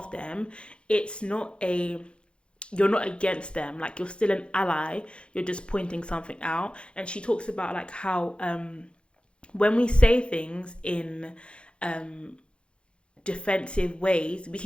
them, it's not you're not against them. Like, you're still an ally. You're just pointing something out. And she talks about like how when we say things in defensive ways, we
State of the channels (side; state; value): right; late; 0.056 ms